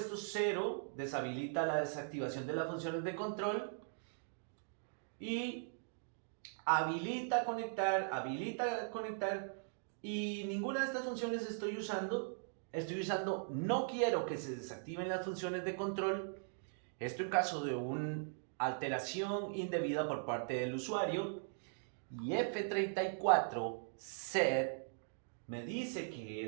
0, deshabilita la desactivación de las funciones de control, y habilita conectar, y ninguna de estas funciones estoy usando. estoy usando no quiero que se desactiven las funciones de control. Esto en caso de una alteración indebida por parte del usuario. Y F34 set me dice que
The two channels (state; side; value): silent; left; digital silence